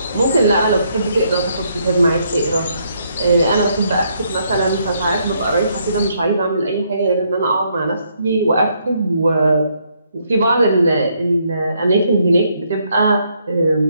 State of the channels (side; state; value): both; inverted; correlation -0.73